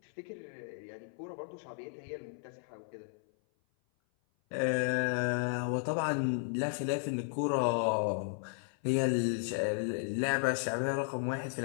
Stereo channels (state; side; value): silent; right; 55 dB below the other